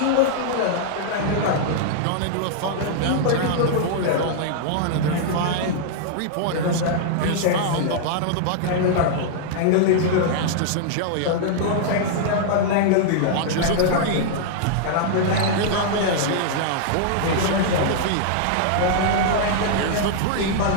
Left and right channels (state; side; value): different; both; correlation -0.01